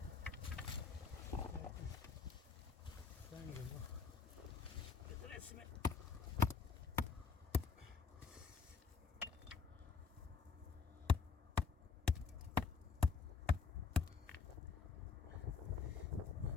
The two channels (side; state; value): right; quieter; 5.1 dB